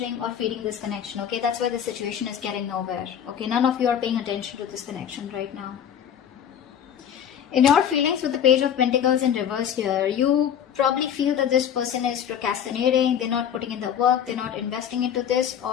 or feeding this connection, okay. That's why the situation is getting nowhere, okay. None of you are paying attention to this connection right now. In your feelings with the Page of Pentacles in reverse here, you probably feel that this person is procrastinating, they're not putting in the work, they're not investing into this,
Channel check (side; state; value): right; quieter; 9.0 dB